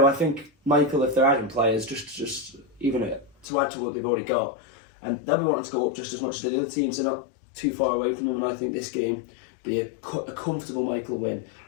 I think Michael, if they're adding players, just even to add to what they've already got, and they'll be wanting to go up just as much as the other teams. They're not too far away from them, and I think this game be a comfortable Michael win.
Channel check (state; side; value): drops out; right; at 3.5 s